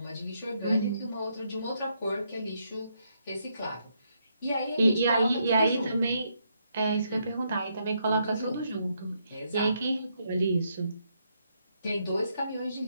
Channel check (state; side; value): inverted; both; correlation -0.76